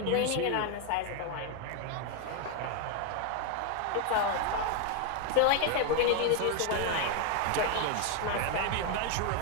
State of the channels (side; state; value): both; different; correlation 0.01